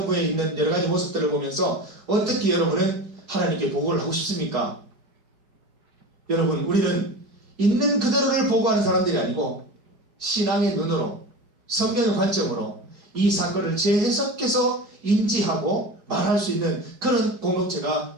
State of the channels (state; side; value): late; left; 4.8 ms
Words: 있는 여러 가지 모습들을 보면서 어떻게 여러분은 하나님께 보고를 하고 싶습니까? 여러분, 우리는 있는 그대로를 보고하는 사람들이 아니고 신앙의 눈으로, 성경의 관점으로 이 사건을 재해석해서 인지하고 말할 수 있는 그런